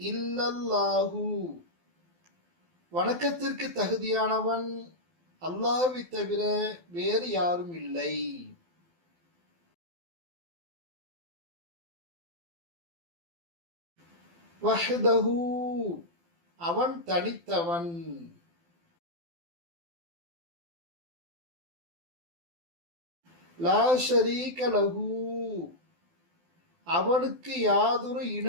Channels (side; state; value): left; late; 12 ms